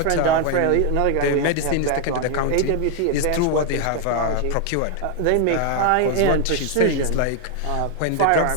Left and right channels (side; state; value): both; different; correlation 0.00